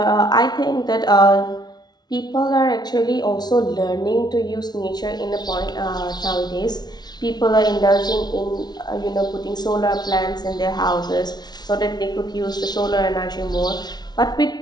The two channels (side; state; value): right; late; 0.19 ms